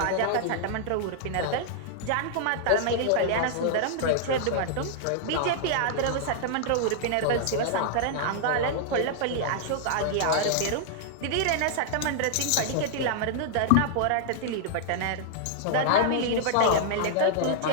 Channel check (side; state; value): both; different; correlation -0.01